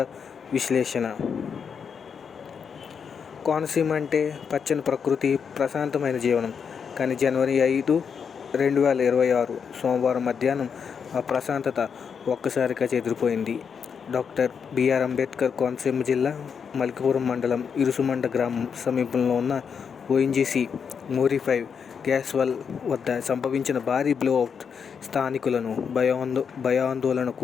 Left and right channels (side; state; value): right; quieter; 6.7 dB